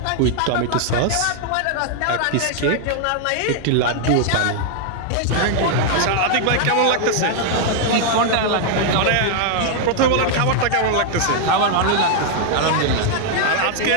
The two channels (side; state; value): both; different; correlation 0.00